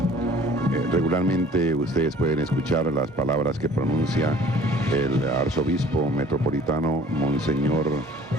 regularmente ustedes pueden escuchar las palabras que pronuncia el arzobispo metropolitano Monseñor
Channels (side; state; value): both; normal; correlation 0.50